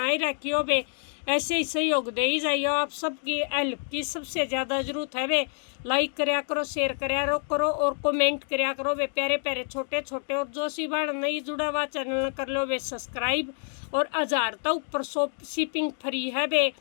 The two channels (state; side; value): silent; right; 60 dB below the other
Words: रखियो बे। ऐसे ही सहयोग दे ही जाइयो। आप सबकी हेल्प की सबसे ज़्यादा ज़रूरत है बे। लाइक कराया करो, शेयर कराया करो और कमेंट कराया करो बे। प्यारे प्यारे छोटे छोटे। और जो सी बहन नहीं जुड़ा हुआ चैनल कर लो बे सब्सक्राइब। और 1000 तक ऊपर शिपिंग फ्री है बे।